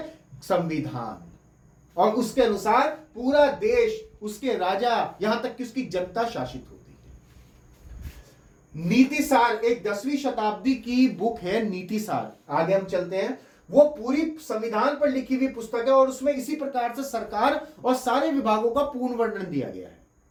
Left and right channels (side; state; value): both; identical; correlation 1.00